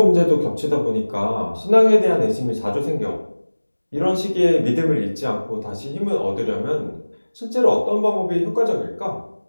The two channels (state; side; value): inverted; both; correlation -1.00